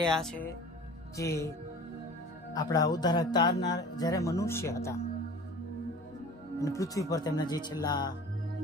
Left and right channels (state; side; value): normal; both; correlation 0.41